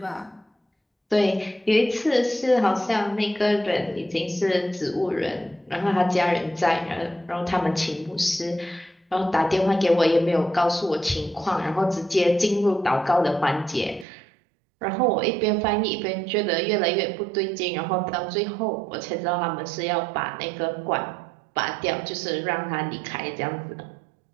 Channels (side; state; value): left; drops out; at 14.1 s